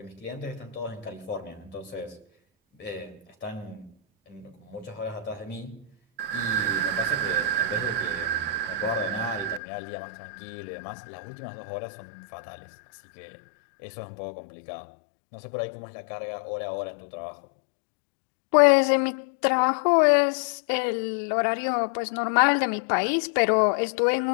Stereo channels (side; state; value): right; drops out; at 9.6 s